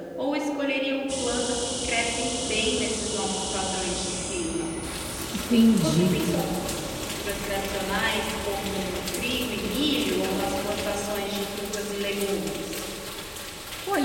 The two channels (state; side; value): identical; both; correlation 1.00